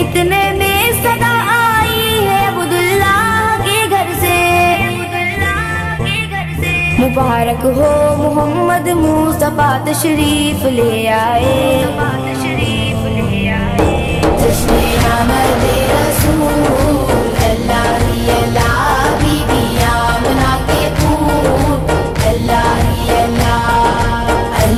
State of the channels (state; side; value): identical; both; correlation 1.00